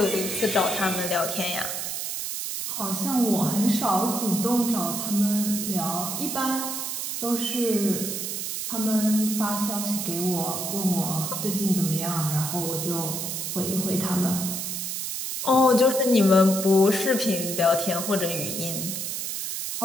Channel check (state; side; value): noise; right; hiss, 4 dB below the sound